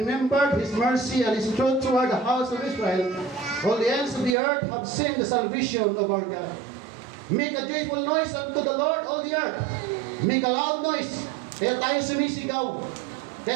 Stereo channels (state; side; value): drops out; left; at 4.4 s